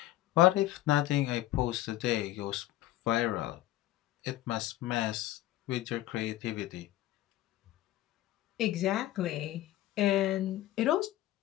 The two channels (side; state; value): right; quieter; 15.0 dB